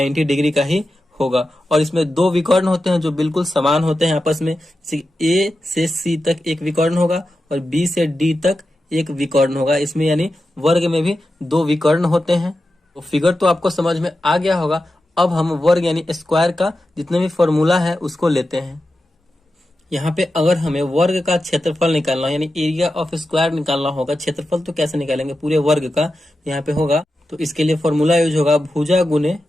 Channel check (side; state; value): both; normal; correlation 0.91